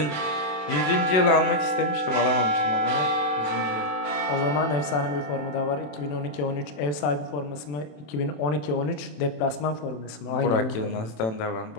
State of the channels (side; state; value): right; late; 27 ms